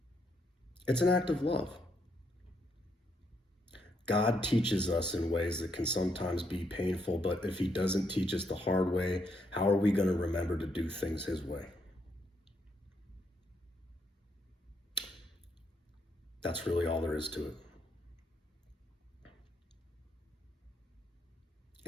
It's an act of love. God teaches us in ways that can sometimes be painful, but if he doesn't teach us the hard way, how are we going to remember to do things his way? That's really all there is to it.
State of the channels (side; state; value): both; normal; correlation 0.76